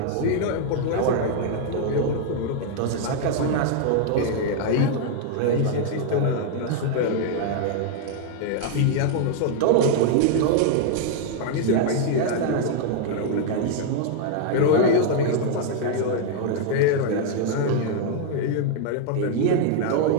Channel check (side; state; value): both; different; correlation 0.00